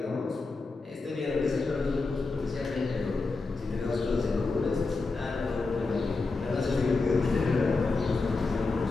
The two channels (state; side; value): quieter; right; 3.9 dB